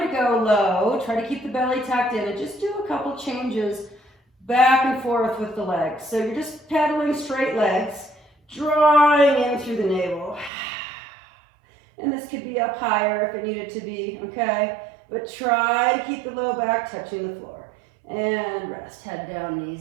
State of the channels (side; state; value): left; drops out; at 10.5 s